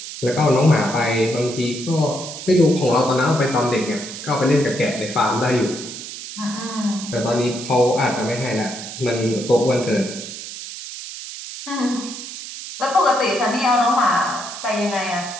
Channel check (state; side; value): noise; right; hiss, 10 dB below the sound